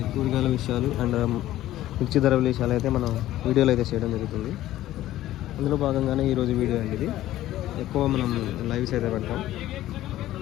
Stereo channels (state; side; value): quieter; right; 14.3 dB